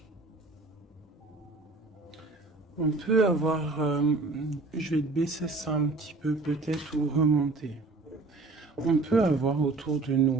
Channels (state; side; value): quieter; left; 3.4 dB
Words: On peut avoir, je vais te baisser ça un petit peu peut-être ou remonter. On peut avoir autour de